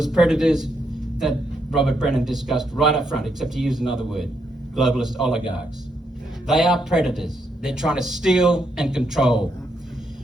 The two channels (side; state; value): both; normal; correlation 0.78